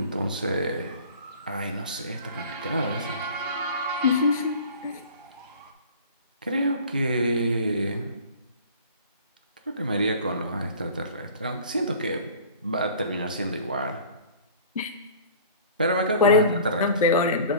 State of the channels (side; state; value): both; inverted; correlation -0.44